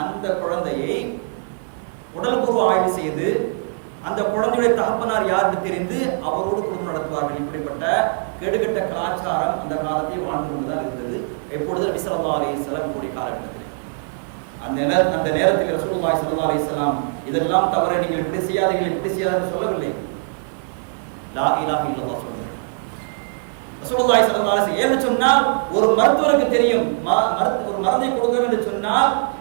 அந்த குழந்தையை உடல்பூர்வ ஆய்வு செய்து அந்த குழந்தையுடைய தகப்பனார் யாருக்கு தெரிந்து அவரோடு குடும்பம் நடத்துவார்கள். இப்படிப்பட்ட கெடுகட்ட கலாச்சாரம் அந்த காலத்தில் வாழ்ந்து கொண்டுதான் இருந்தது. எப்பொழுது நபி ஸல்லல்லாஹு அலைஹி வஸல்லம் கூடிய காலகட்டத்தில் அந்த நேரத்தில் ரசூலுல்லாஹி ஸல்லல்லாஹு அலைஹி வஸல்லம் இதெல்லாம் தவறு, நீங்கள் இப்படி செய்யாதீர்கள் இப்படி செய்யாதீர்கள் சொல்லவில்லை. லா இலாஹ இல்லல்லாஹ் சொல்லுங்கள். ரசூலுல்லாஹி ஸல்லல்லாஹு அலைஹி வஸல்லம் ஏன்னு சொன்னால், ஒரு மருத்துவருக்கு தெரியும் ஒரு மருந்தை கொடுக்கணும் என்று சொன்னால்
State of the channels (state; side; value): silent; left; 62 dB below the other